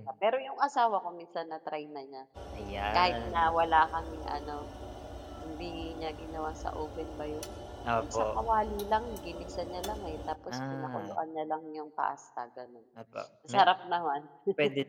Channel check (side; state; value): both; identical; correlation 1.00